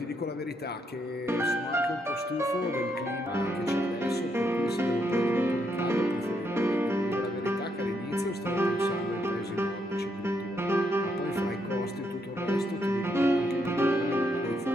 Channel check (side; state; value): both; normal; correlation 0.77